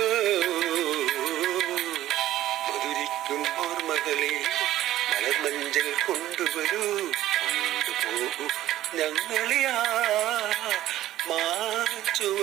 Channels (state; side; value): quieter; left; 13.9 dB